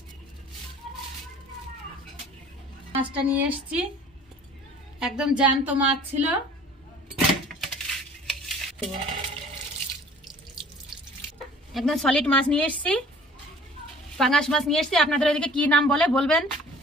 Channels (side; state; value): both; normal; correlation 0.50